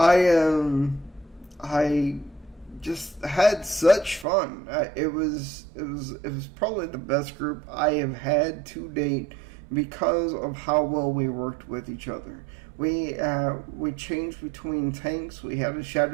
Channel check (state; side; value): drops out; left; at 4.2 s